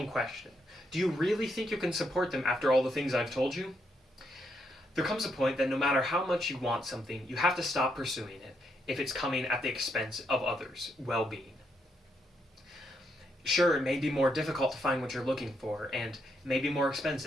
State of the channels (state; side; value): normal; both; correlation 0.78